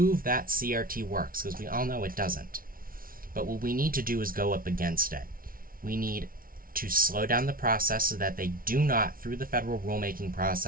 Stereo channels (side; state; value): left; late; 0.42 ms